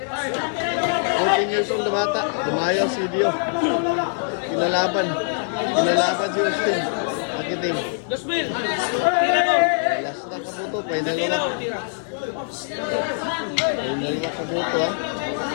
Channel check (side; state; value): right; silent; digital silence